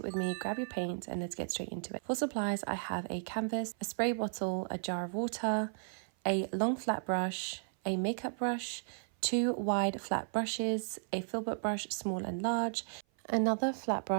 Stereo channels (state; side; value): silent; left; 55 dB below the other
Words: with me, grab your paint and let's get straight into it. For supplies, I have a canvas, a spray bottle, a jar of water, a long flat brush, a makeup brush, 2 wide flat brushes, a filbert brush small and large, another flat